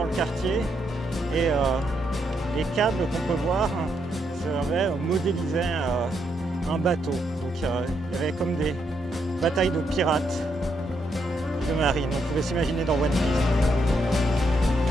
le quartier. Et les câbles qu'on peut voir modélisaient un bateau. Donc il y avait comme des batailles de pirates de marine. On pouvait s'imaginer dans One Piece.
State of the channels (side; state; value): both; normal; correlation 0.78